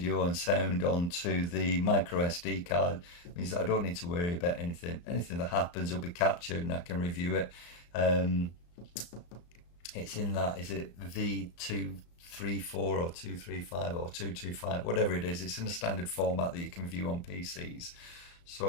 and sound onto the micro SD card means that I don't need to worry about anything. Anything that happens will be captured and I can review it. It's in that, is it V234 or 235 or 225, whatever it is. It's in a standard format that you can view on PCs.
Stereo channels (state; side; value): late; right; 34 ms